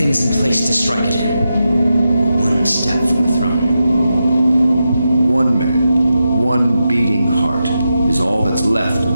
is in place to strike at him. We're one step from the throne. One man, one beating heart, is all that's left of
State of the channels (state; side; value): inverted; both; correlation -0.88